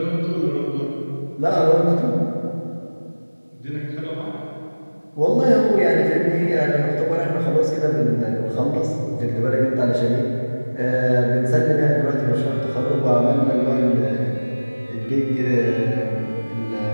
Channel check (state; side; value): inverted; both; correlation -1.00